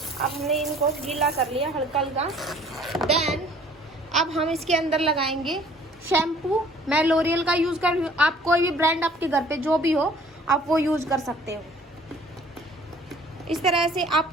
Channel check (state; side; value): normal; both; correlation 0.54